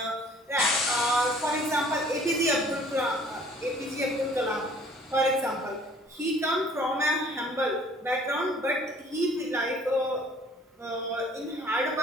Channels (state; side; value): normal; both; correlation 0.55